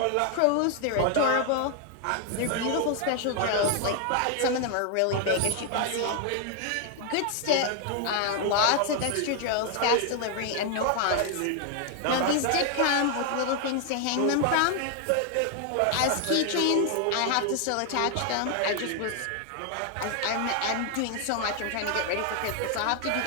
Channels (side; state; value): both; different; correlation 0.00